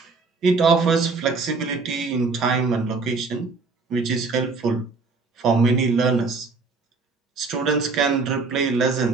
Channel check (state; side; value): quieter; left; 4.2 dB